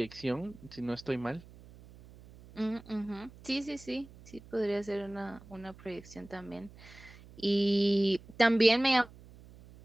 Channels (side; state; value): right; noise; hum, 21 dB below the sound